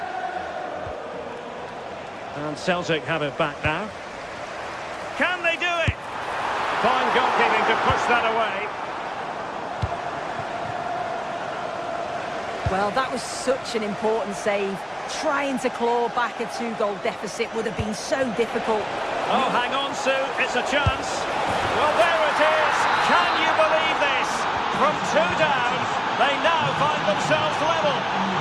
And Celtic have it back now. Can they do it? Fine goalkeeping to push that away. Well, that was such an important save. Trying to claw back a 2-goal deficit would have been so difficult. Oh, hang on, Sue. It's a chance. Well, there it is. Can you believe this? From 2 down, they now find themselves level.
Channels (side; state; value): both; identical; correlation 1.00